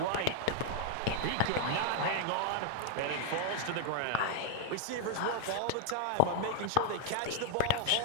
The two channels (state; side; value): different; both; correlation 0.00